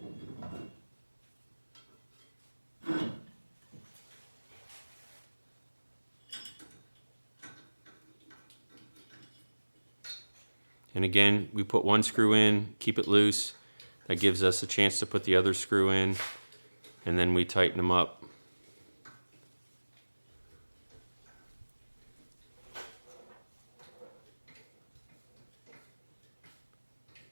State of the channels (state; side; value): inverted; both; correlation -1.00